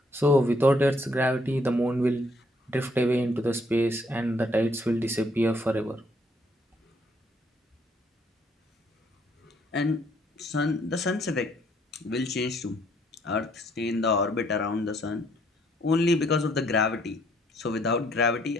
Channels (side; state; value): both; normal; correlation 0.67